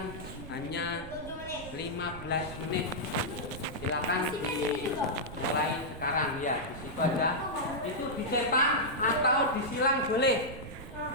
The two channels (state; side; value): noise; right; rumble, 12 dB below the sound